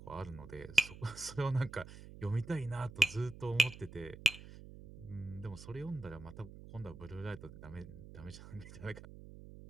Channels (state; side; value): noise; right; hum, 15 dB below the sound